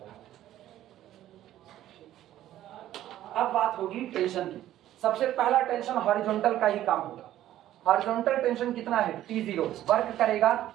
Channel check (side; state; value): left; quieter; 13.0 dB